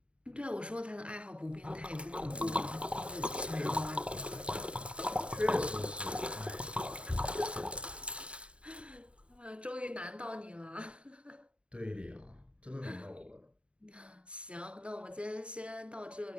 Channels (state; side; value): late; left; 0.058 ms